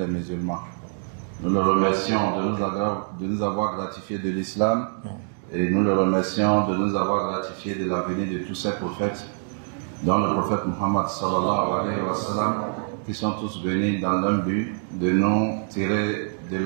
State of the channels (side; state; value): left; silent; 62 dB below the other